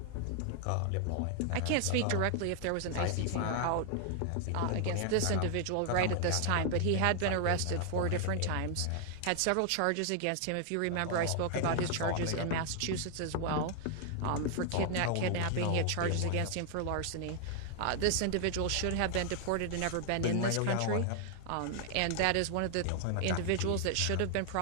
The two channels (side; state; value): both; different; correlation 0.00